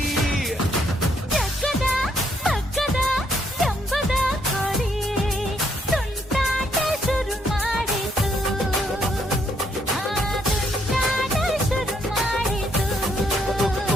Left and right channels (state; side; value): normal; both; correlation 0.72